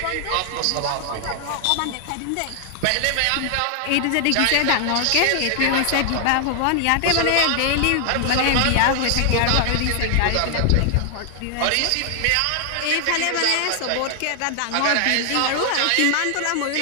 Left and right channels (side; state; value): both; different; correlation 0.00